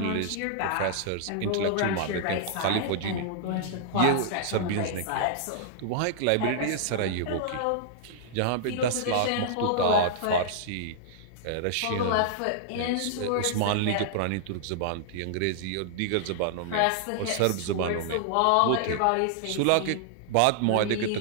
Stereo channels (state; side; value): different; both; correlation -0.01